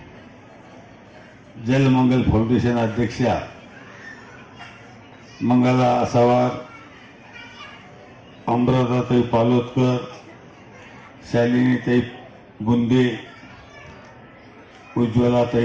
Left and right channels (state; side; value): identical; both; correlation 1.00